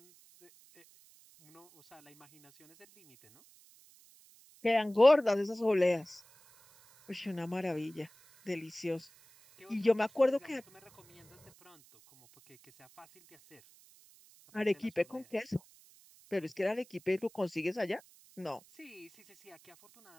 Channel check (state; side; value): noise; right; hiss, 26 dB below the sound